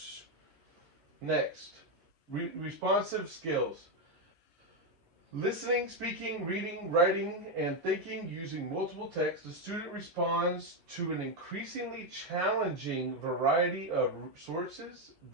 Next, responsive skills. Listening, speaking, reading, writing, and thinking using multiple texts, the student responds to an increasingly challenging variety of sources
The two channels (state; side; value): late; left; 12 ms